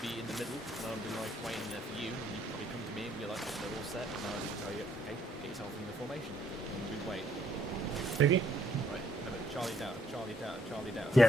be in the middle, and I would be like waiting there for you, and you'd probably come to me and be like, they're all set, and I would tell you, okay, get yourself in the formation, and we'd wait. Okay. Right, remember, Charlie down, Charlie down, Charlie down.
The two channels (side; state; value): both; normal; correlation 0.68